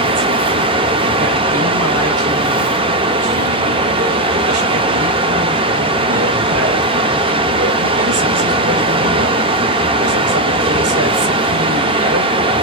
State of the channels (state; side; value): normal; both; correlation 0.06